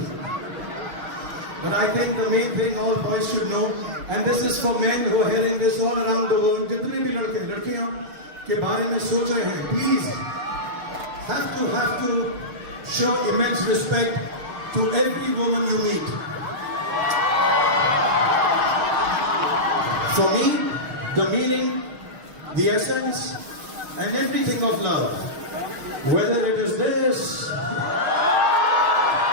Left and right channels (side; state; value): left; late; 6.4 ms